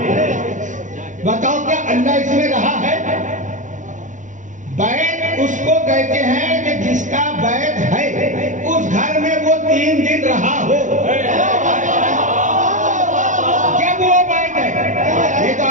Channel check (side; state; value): left; late; 0.37 ms